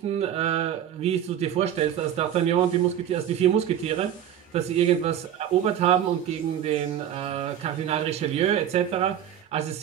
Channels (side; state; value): left; quieter; 10.2 dB